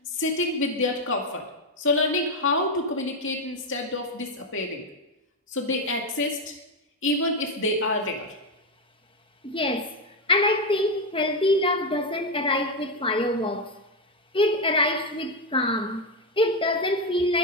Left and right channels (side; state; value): both; normal; correlation 0.07